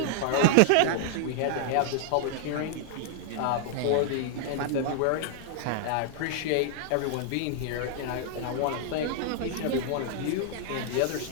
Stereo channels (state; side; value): different; both; correlation 0.00